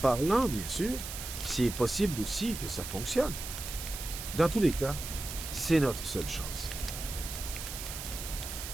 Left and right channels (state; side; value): noise; right; hiss, 8 dB below the sound